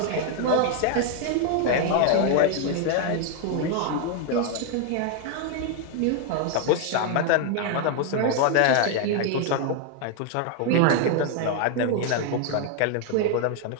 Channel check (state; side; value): different; both; correlation 0.00